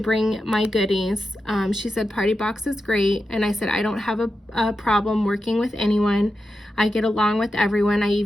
bring my goodies. She said Party Box is great, and I said I don't have a problem working with anyone. I get along with everyone. I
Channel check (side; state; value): both; normal; correlation 0.90